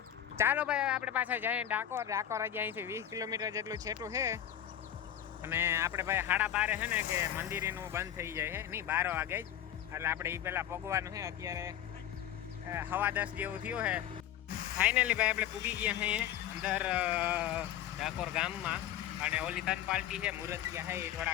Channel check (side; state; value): right; quieter; 10.9 dB